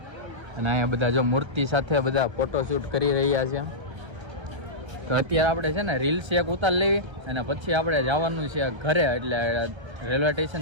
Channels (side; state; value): left; late; 1.3 ms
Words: અને અહીંયા બધા જો મૂર્તિ સાથે બધા ફોટોશૂટ કરી રહ્યા છે. તો અત્યારે આપણે છે ને રીલ્સ એક ઉતાર લેવી અને પછી આપણે જવાનું છે ઘરે એટલે રેલવે